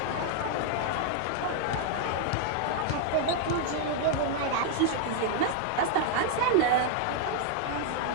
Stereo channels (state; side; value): different; both; correlation 0.00